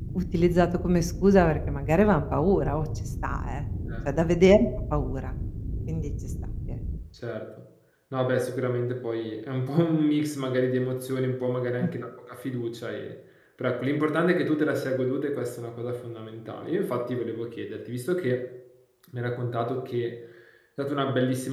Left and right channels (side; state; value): both; identical; correlation 1.00